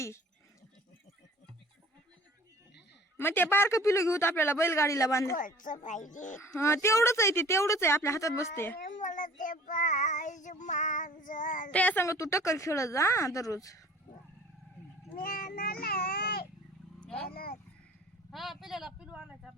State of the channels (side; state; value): both; normal; correlation 0.47